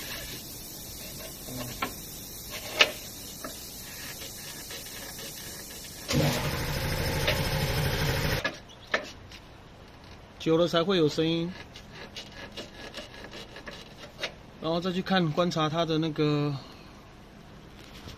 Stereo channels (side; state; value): both; identical; correlation 1.00